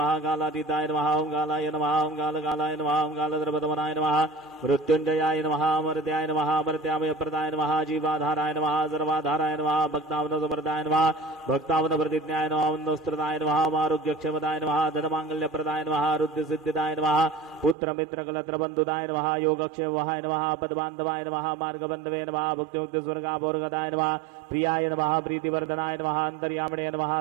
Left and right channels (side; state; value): left; drops out; at 17.8 s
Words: कालातीताय नमः ओम कालाय नमः ओम कालकालाय नमः ओम कालद्रवदमनाय नमः मृत्युंजयाय नमः अमर्त्याय नमः अमर्त्यामयप्रदाय नमः जीवाधाराय नमः सर्वाधाराय नमः भक्तावनसमर्दाय नमः भक्तावनप्रतिज्ञाय नमः वन्दस्त्रदाय नमः आरोग्यक्षमताय नमः धनमाङ्गल्यप्रदाय नमः रुद्रसिद्धिदाय नमः पुत्रमित्रकलत्रबन्धुदाय नमः योगक्षेमाय नमः पदबान्धवाय नमः मार्गबन्धवे नमः भुक्तिमुक्तिस्वर्गाभोर्गदाय नमः प्रियाय नमः प्रीतिवर्धनाय नमः अन्तर्यामिणे नमः